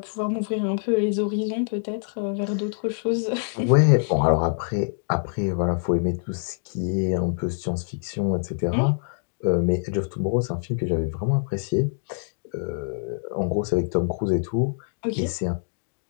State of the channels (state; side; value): silent; right; digital silence